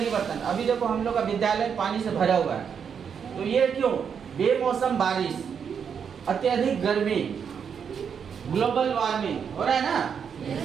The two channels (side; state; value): left; quieter; 7.1 dB